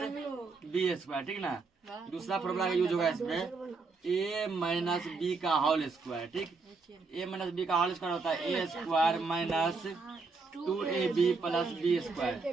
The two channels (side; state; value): left; quieter; 4.3 dB